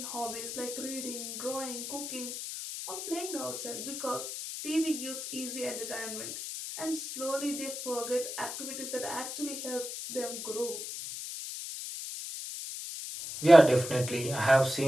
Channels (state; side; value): noise; left; hiss, 6 dB below the sound